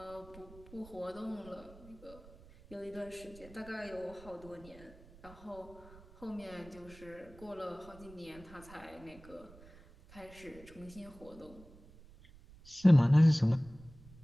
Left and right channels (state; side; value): noise; right; rumble, 21 dB below the sound